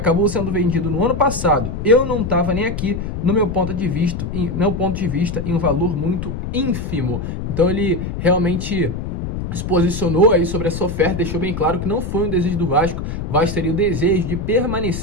sendo vendido no ano passado. Eu não estava nem aqui, no meu ponto de vista, em um valor muito ínfimo. Então ele realmente se posicionou aí sobre essa oferta, deixou bem claro que não foi um desejo do Vasco. O Vasco teria o desejo de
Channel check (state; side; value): noise; left; rumble, 5 dB below the sound